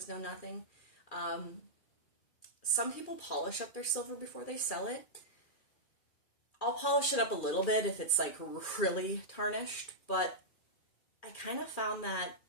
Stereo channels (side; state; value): right; late; 2.4 ms